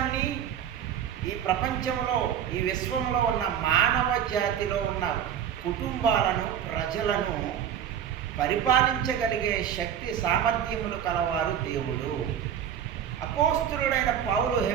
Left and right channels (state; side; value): quieter; left; 9.3 dB